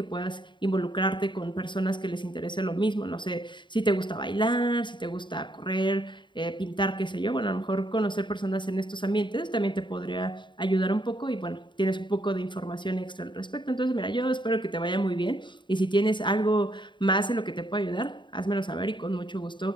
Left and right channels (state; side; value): late; right; 0.23 ms